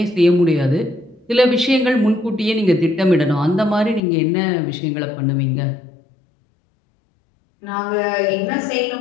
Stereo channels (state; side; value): drops out; right; at 4.0 s